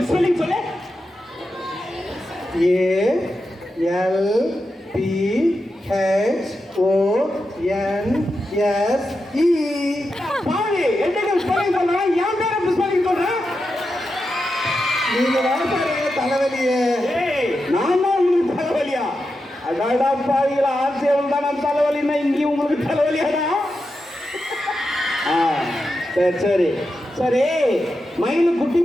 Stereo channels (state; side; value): normal; both; correlation 0.88